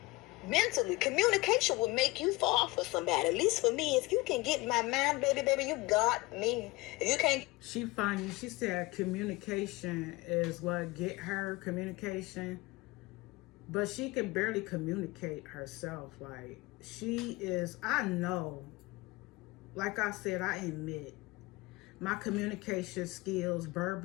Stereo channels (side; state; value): right; quieter; 21.9 dB